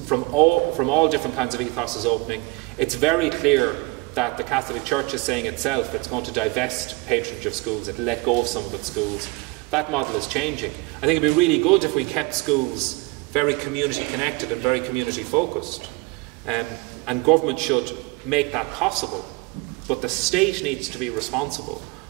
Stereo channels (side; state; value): left; quieter; 25.2 dB